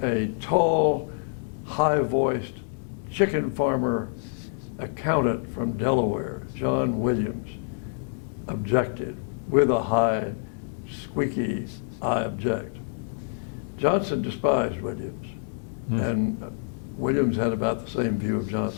a tall, high-voiced chicken farmer accountant from Delaware, John Williams, objected with a high, squeaky, "I object." Johnson despised Williams, and Williams had about the same view of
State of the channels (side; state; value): right; silent; digital silence